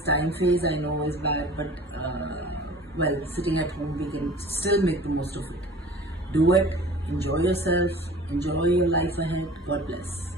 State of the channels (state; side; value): normal; both; correlation 0.44